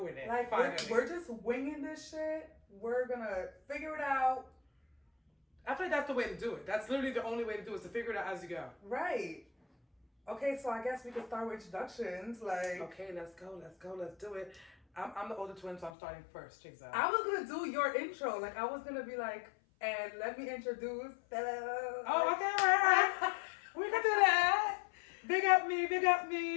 it. Like, finally. we're just winging this shit. We're going to figure it out. I feel like that's the way to do it. That's literally the only way to do it, is to figure it out as you go. Right. Okay, so I guess we can start with introductions. Like, okay, let's go, let's do it. I'm the older twin, so I'm starting first, Jeizel. I was going to do your intro. Like, I was going to be like, and let me introduce. Oh, okay, right. We can do that. Big up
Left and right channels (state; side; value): drops out; right; at 15.9 s